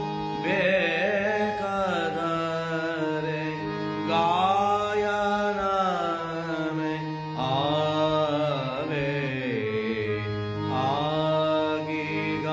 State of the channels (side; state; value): both; identical; correlation 1.00